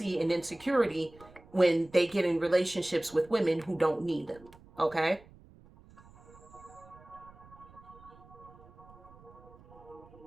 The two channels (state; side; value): noise; right; rumble, 23 dB below the sound